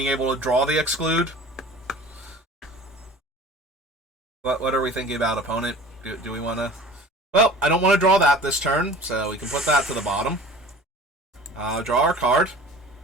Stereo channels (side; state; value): both; normal; correlation 0.42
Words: able to draw the Exclude. What are we thinking about, opponent? Do we want to... Well, I don't want to draw that this turn, so we can put that to the bottom. Draw our card.